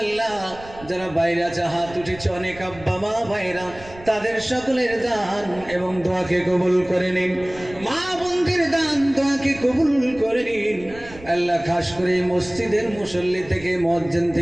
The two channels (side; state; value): right; noise; rumble, 19 dB below the sound